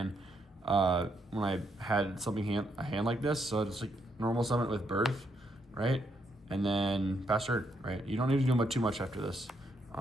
when I had a hand like this. So it's like normal summon with Birth, right? And then Fast Turn, right? You don't need to do too much after this.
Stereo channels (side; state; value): both; normal; correlation 0.76